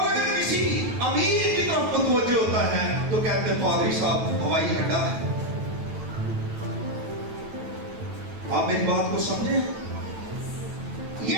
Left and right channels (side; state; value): left; late; 9.1 ms